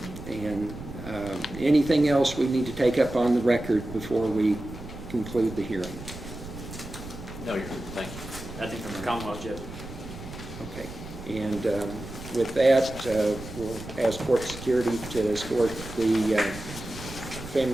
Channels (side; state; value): right; noise; rumble, 13 dB below the sound